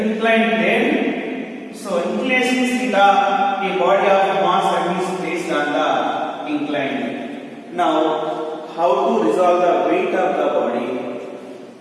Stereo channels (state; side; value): identical; both; correlation 1.00